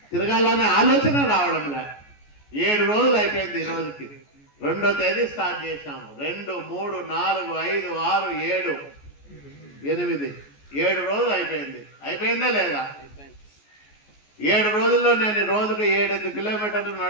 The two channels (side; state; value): right; late; 14 ms